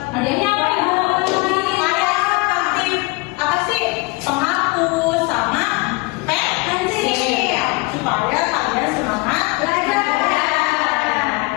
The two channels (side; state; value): right; quieter; 26.0 dB